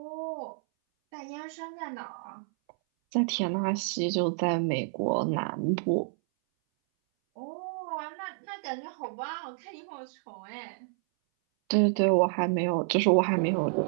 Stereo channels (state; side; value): silent; left; 58 dB below the other